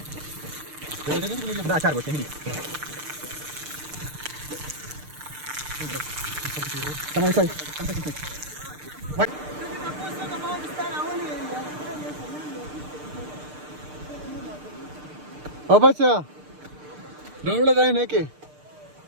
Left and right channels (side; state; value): left; late; 6.6 ms